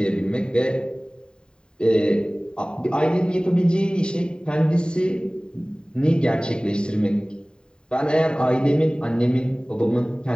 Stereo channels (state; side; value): late; right; 0.049 ms